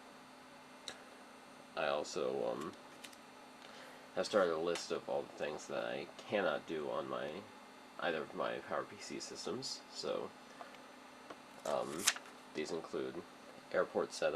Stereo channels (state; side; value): identical; both; correlation 1.00